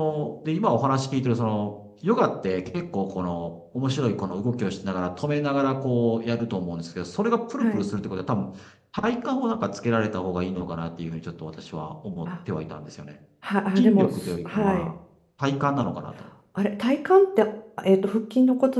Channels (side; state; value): both; identical; correlation 1.00